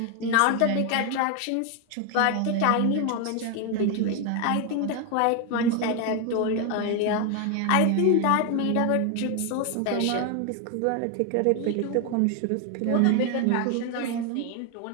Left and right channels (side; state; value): both; different; correlation 0.01